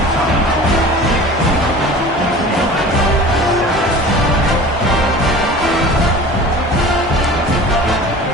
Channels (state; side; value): normal; both; correlation 0.40